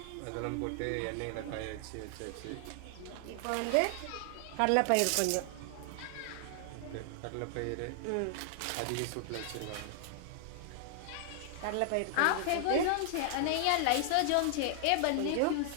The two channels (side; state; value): both; different; correlation 0.00